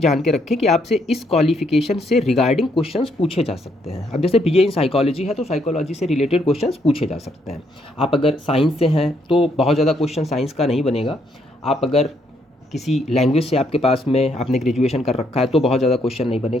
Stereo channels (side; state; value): both; normal; correlation 0.73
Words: के रखें कि आपसे इस क्वालिफिकेशन से रिगार्डिंग क्वेश्चंस पूछे जा सकते हैं। अब जैसे BA इन साइकोलॉजी है तो साइकोलॉजी से रिलेटेड क्वेश्चंस पूछे जा सकते हैं। आप अगर साइंस से हैं तो बहुत ज़्यादा क्वेश्चन साइंस का नहीं बनेगा। आप अगर किसी लैंग्वेज से आपके पास में आपने ग्रेजुएशन कर रखा है तो बहुत ज़्यादा क्वेश्चन नहीं